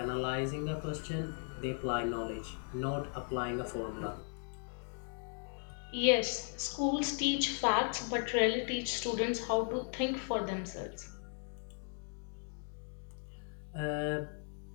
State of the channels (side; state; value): right; silent; 53 dB below the other